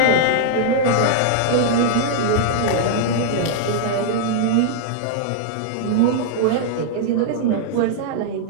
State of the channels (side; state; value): both; different; correlation -0.01